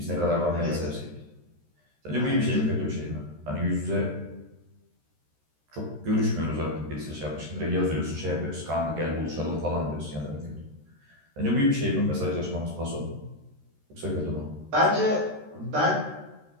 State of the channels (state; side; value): late; left; 13 ms